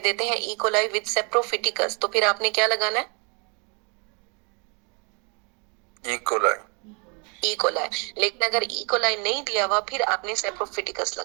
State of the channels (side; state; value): left; quieter; 34.2 dB